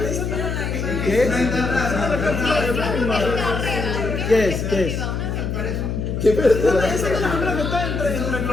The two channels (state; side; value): noise; left; hum, 2 dB below the sound